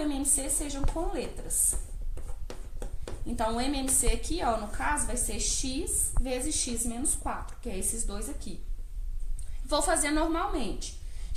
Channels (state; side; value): identical; both; correlation 1.00